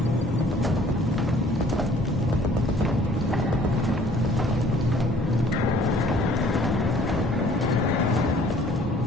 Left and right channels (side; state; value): both; normal; correlation 0.56